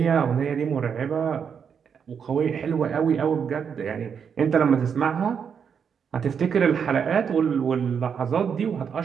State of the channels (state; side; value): quieter; left; 7.0 dB